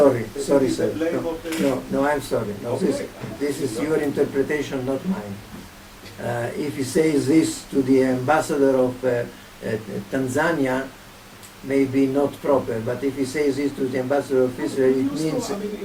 sorry, the sir. blame No, of the- no, I'm sorry. No, Okay. this is your interpretation, not mine. If he says this to the ambassador of Tanzania, maybe not proper. But if he says this to the ambassador of Israel,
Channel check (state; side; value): identical; both; correlation 1.00